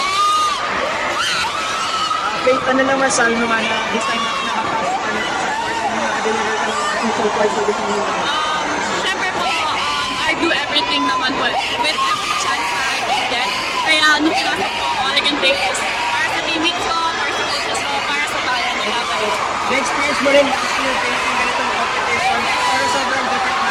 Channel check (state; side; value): identical; both; correlation 1.00